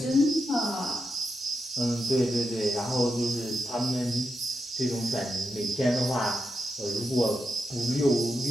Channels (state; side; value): normal; both; correlation 0.87